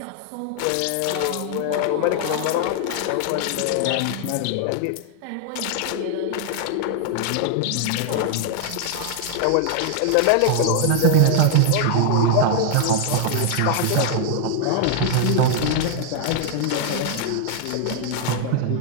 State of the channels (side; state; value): both; different; correlation 0.00